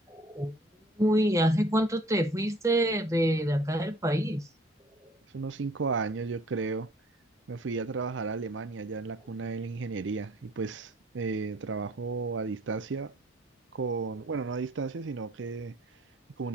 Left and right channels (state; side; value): normal; both; correlation 0.56